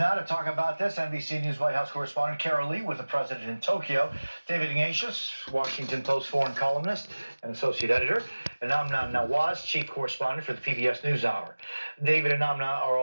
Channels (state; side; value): inverted; both; correlation -1.00